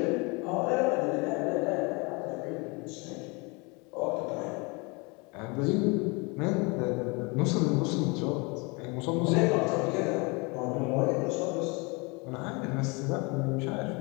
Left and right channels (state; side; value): quieter; right; 28.7 dB